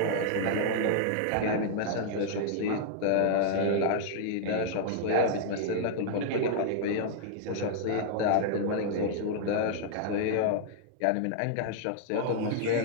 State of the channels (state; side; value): different; both; correlation -0.01